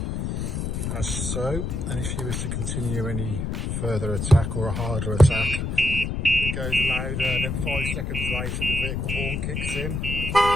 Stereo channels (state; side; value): noise; left; rumble, 2 dB below the sound